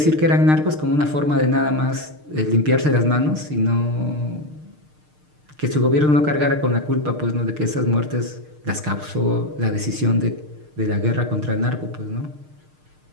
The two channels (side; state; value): left; late; 6.6 ms